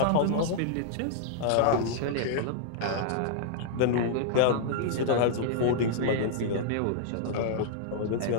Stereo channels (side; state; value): both; different; correlation -0.01